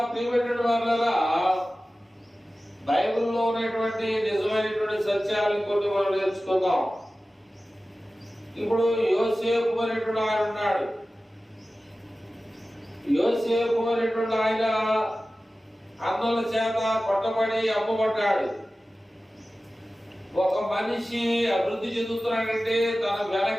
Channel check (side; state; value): both; normal; correlation 0.96